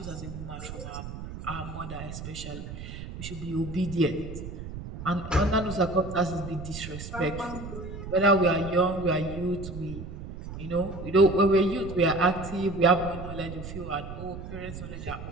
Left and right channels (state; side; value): noise; right; rumble, 10 dB below the sound